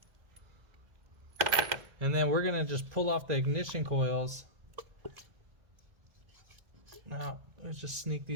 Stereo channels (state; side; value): late; left; 2.1 ms